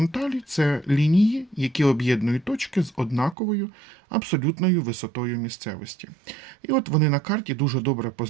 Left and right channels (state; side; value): drops out; left; at 3.4 s